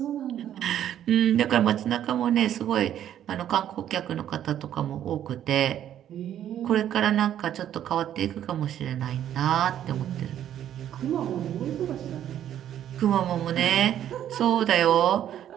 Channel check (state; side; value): quieter; left; 10.8 dB